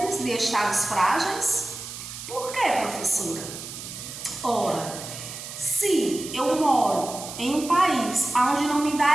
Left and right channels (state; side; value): noise; right; hiss, 10 dB below the sound